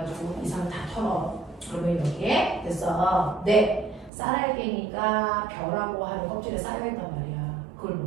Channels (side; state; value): left; drops out; at 4.1 s